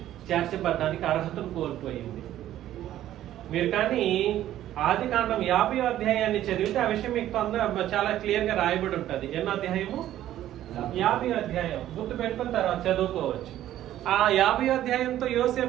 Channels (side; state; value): left; quieter; 12.7 dB